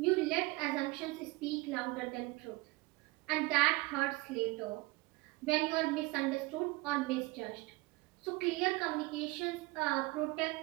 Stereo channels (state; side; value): quieter; left; 22.4 dB